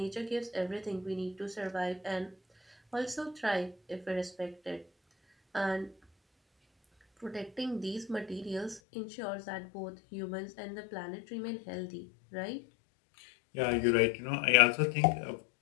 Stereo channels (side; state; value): right; drops out; at 8.8 s